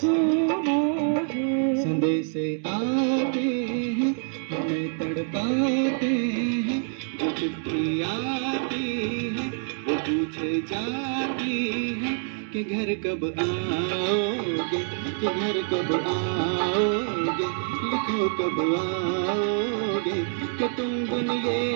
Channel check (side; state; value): left; silent; 59 dB below the other